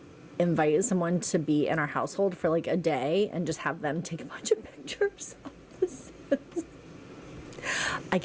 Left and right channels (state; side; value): identical; both; correlation 1.00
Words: invite someone to be in our household for like a day and just have them take a bunch of pictures of the Sims. I